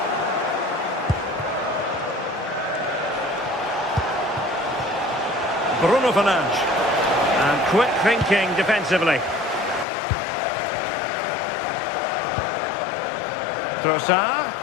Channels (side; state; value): right; drops out; at 9.9 s